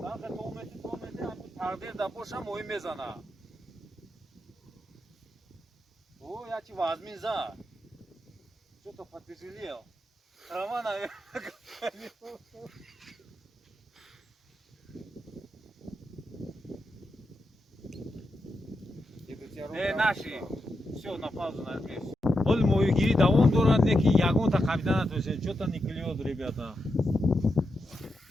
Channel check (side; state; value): both; normal; correlation 0.86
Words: آخه تو میتی همین تقدیر دا باشه موی میزنه. او یا چی وازمین زا. Что-то потяжелел. Трава, наверное, наши. Все, на паузу нажми. Оль мою гири давом дорад неки ягон та капитана то есть что-то не клюет, ребята.